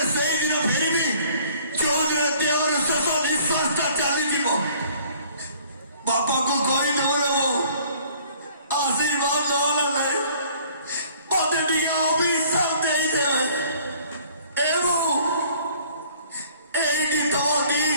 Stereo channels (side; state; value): both; inverted; correlation -0.56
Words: ସେଇଦିନ ଫେରିବି ଯୋଉଦିନ ଦେହର ଶେଷ ନିଶ୍ୱାସଟା ଚାଲିଯିବ। ବାପାକୁ କହିଦେବ ନା ମୁଁ ଆଶୀର୍ବାଦ ନହେଲା ନାହିଁ ମତେ ଟିକେ ଅଭିଶାପ ଦେଇଦେବେ ଏବଂ ଏଇଠି ତମ ଦି